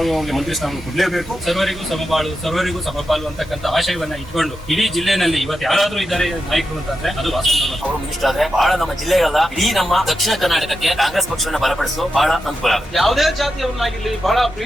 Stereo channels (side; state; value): both; normal; correlation 0.88